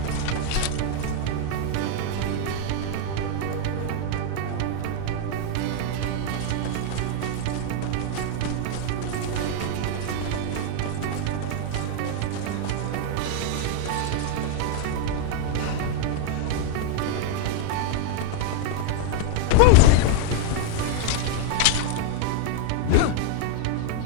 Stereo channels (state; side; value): different; both; correlation 0.00